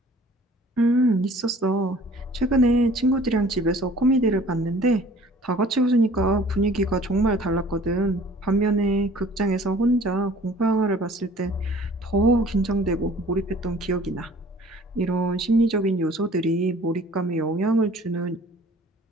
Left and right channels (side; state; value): both; normal; correlation 0.51